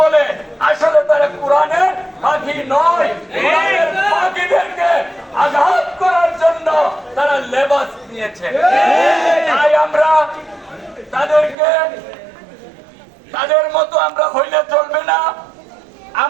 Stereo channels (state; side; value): drops out; left; at 11.6 s